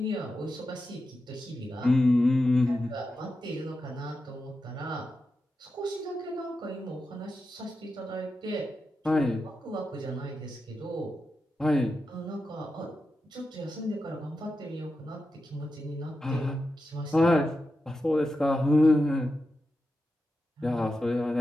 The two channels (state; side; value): normal; both; correlation 0.90